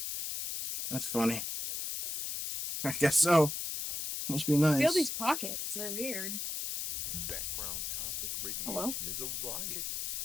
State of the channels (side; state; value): left; noise; hiss, 3 dB below the sound